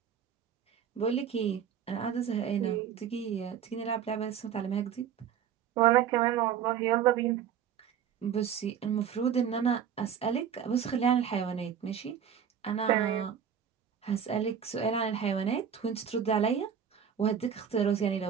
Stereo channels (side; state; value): left; quieter; 8.3 dB